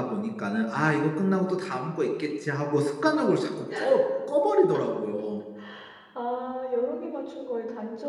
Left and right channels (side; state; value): both; identical; correlation 1.00